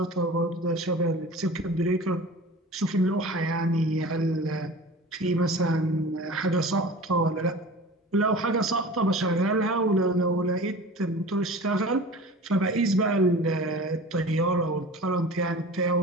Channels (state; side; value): normal; both; correlation 0.38